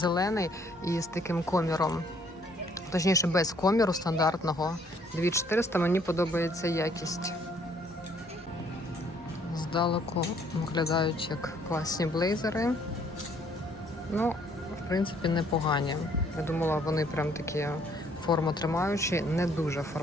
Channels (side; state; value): both; normal; correlation 0.64